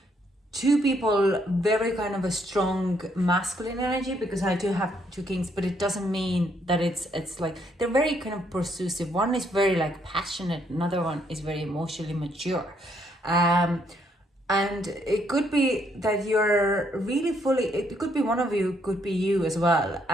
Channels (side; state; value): both; normal; correlation 0.71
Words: people, very kind of a strong masculine energy, because I do have two kings, but it doesn't mean that it's like they're very kind of pursusive. One is very like passionate, another one is very emotionally mature. And it could be that you're really fully, it could be one of you, could be you as well,